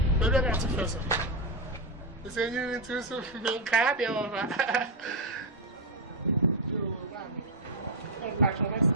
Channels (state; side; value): normal; both; correlation 0.04